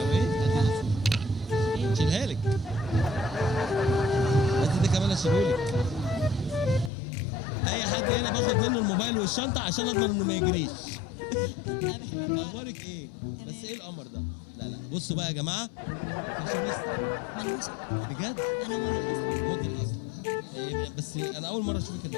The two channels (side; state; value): right; drops out; at 6.9 s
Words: ايه؟ شيلها لك. بس ده كمان اشيلهولك. اي حد هنا باخد منه الموبايل والشنطه عشان اضمن انه ما يجريش. انا بحبك. اخبارك ايه؟ بس ايه القمر ده؟ لا بصوا بقى يا جماعه، فاشونيستا ما انا مش بجد. انا موديل اصلا. موديل اصلا. إيه بس انا اول مره اشوفك